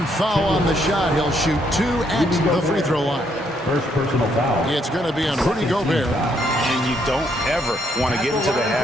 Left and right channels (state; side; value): normal; both; correlation 0.72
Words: foul on the shot. He'll shoot 2 at the free throw line. First personal foul. It's going to be on Rudy Gobert. And you don't ever want to get into the